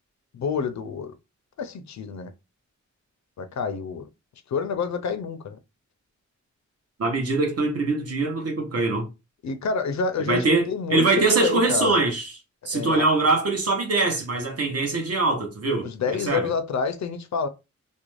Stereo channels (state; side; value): normal; both; correlation 0.11